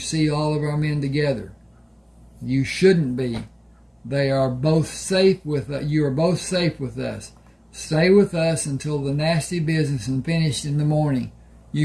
all of our men together. You shouldn't be. You are both safe with us. Stay with us until the nasty business is finished in the morning.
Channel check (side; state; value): both; identical; correlation 1.00